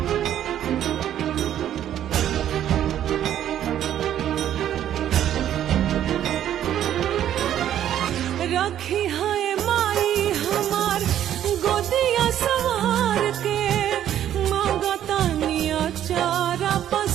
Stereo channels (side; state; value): left; quieter; 11.0 dB